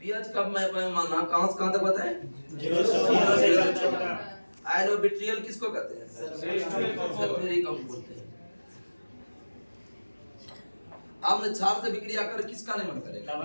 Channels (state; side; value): inverted; both; correlation -1.00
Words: पीएच कब मैं माना कहां से कहां तक बताएं? 0 से 14। आयनोबिट्रियल किसको कहते हैं? सल्फ्यूरिक अम्ल बोलते हैं। अम्ल क्षार से विक्रिया कर किसका निर्माण करेगा?